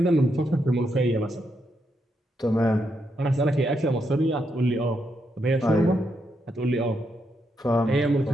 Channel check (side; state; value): both; normal; correlation 0.81